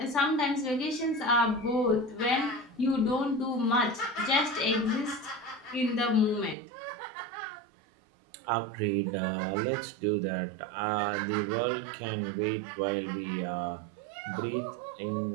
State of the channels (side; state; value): left; drops out; at 6.6 s